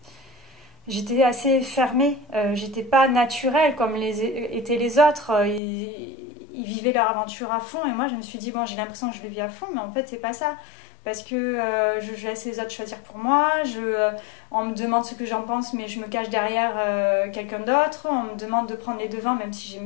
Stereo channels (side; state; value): right; drops out; at 5.6 s